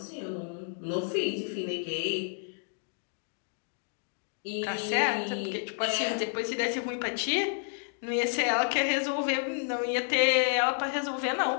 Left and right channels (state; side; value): silent; right; 58 dB below the other